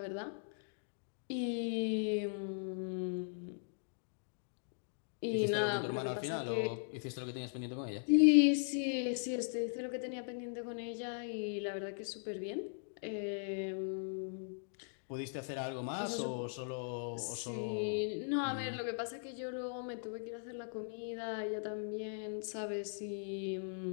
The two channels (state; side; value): silent; right; digital silence